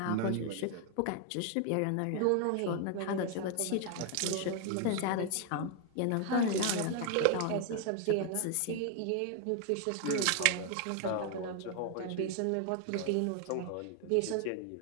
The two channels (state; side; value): different; both; correlation 0.00